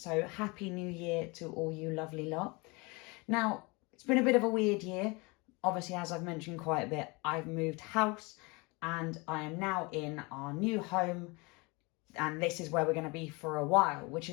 happy new year to all you lovely lot. Now, it's been a bit of a weird year. Obviously, as I've mentioned quite a bit, I've moved house and I am now in our new home. And this is where we're going to be for a while, which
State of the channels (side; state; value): right; quieter; 27.1 dB